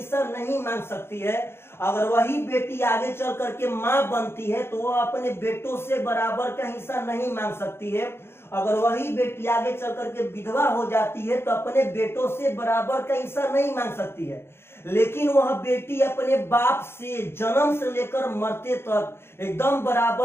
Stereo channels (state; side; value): late; right; 0.12 ms